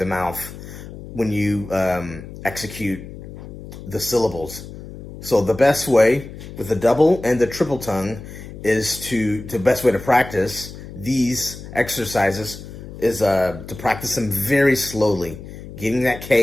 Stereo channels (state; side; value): noise; left; hum, 13 dB below the sound